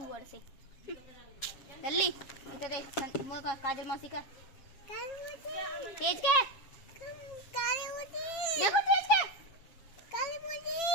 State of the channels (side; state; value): right; late; 7.4 ms